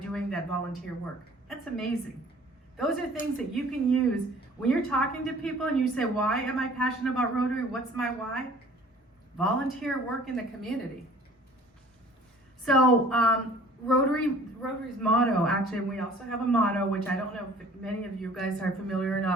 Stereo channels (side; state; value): both; normal; correlation 0.50